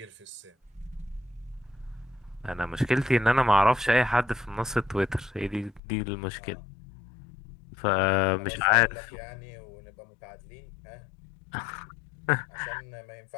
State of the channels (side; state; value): right; drops out; at 5.8 s